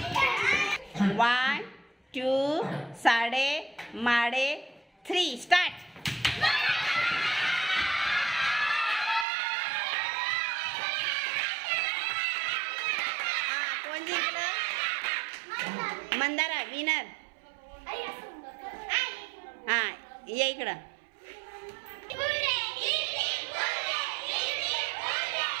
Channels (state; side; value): drops out; left; at 9.2 s